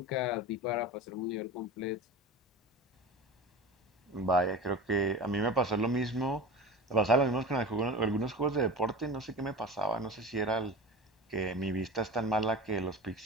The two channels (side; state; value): both; normal; correlation 0.32